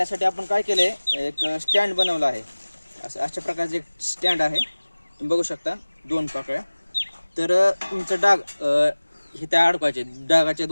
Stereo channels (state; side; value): inverted; both; correlation -1.00